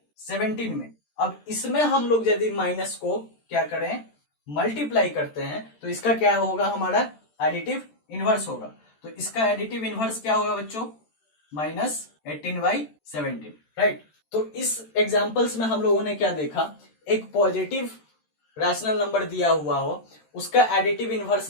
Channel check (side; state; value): right; late; 13 ms